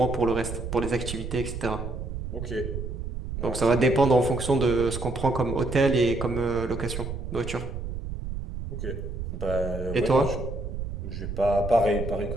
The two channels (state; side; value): noise; right; rumble, 6 dB below the sound